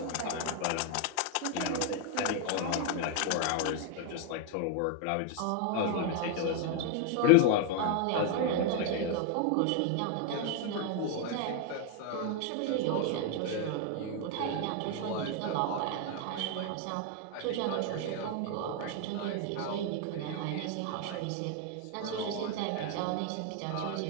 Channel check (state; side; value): different; both; correlation 0.00